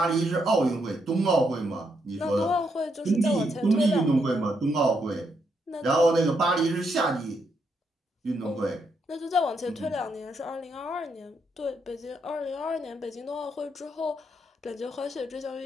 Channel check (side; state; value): both; normal; correlation 0.78